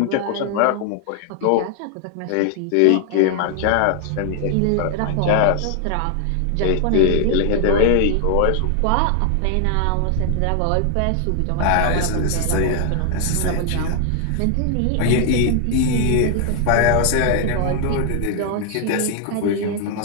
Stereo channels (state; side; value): different; both; correlation 0.00